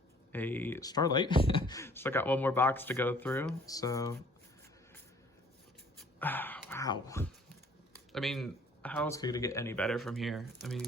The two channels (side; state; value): both; normal; correlation 0.56